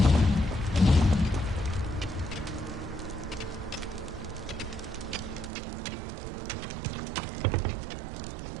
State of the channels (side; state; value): left; drops out; at 5.5 s